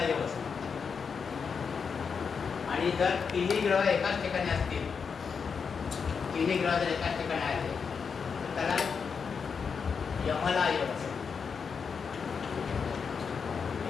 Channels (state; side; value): quieter; right; 5.9 dB